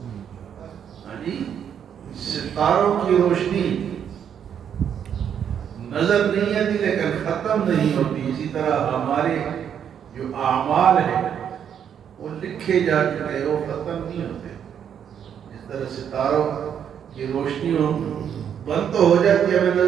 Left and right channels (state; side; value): quieter; left; 8.5 dB